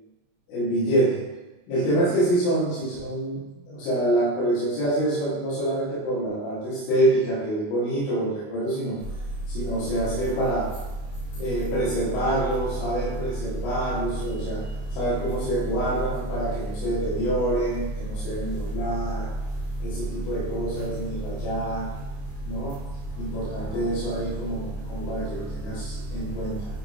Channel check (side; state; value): right; late; 28 ms